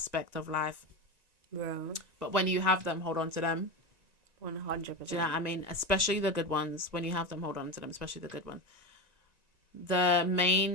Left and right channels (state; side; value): late; left; 1.9 ms